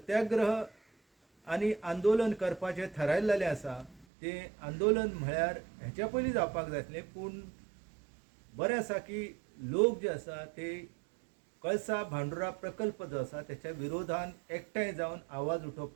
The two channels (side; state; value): left; drops out; at 4.0 s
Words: आनी आंदोलन करपाचें थारायल्लें आसा तें आंदोलन म्हळ्यार हेच्या पयलीं जावपाक जाय आसलें, पूण बरें आसा की लोक जे आसा ते कळसा भांडुरा प्रकल्प जो आसा तेच्या विरोधान एकठांय जावन आवाज